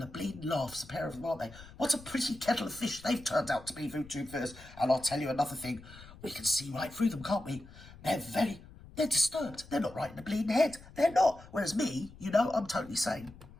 of bleeding laughs, a pair of them, aren't they? What a pretty kettle of fish they've turned out to be, VooTubers. And I'll tell you another thing. We can see right through them, can't we? They're disturbed. They're not right in the bleeding head. They're not. Whereas me, you know, I'm totally sane.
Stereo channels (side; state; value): left; noise; rumble, 19 dB below the sound